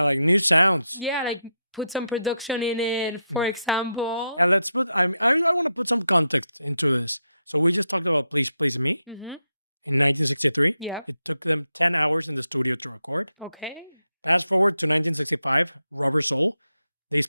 like new sounds. Yeah, like put some production in it, for example. Yeah, let's put. I want to put some context into this. So we just talked about "Please Please Me" in 1963. Yeah. It took them 10 hours in the studio to record. Okay. Fast forward to 1965, Rubber Soul. They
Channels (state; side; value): inverted; both; correlation -0.85